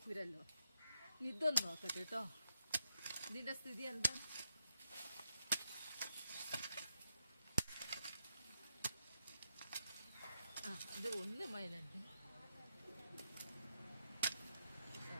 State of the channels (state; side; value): inverted; both; correlation -0.83